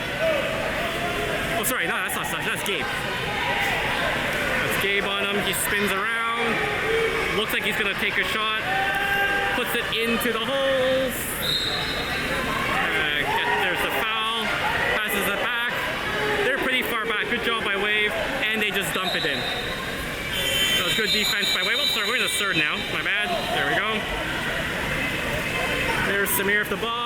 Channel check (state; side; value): identical; both; correlation 1.00